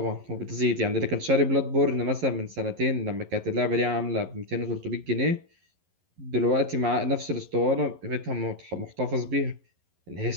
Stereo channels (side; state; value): left; late; 11 ms